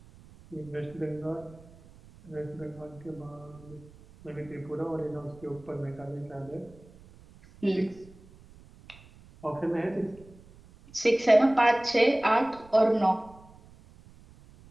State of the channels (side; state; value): right; noise; rumble, 23 dB below the sound